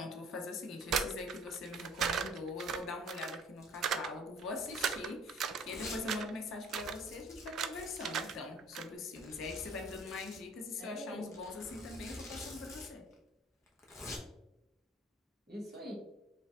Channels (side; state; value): both; normal; correlation 0.52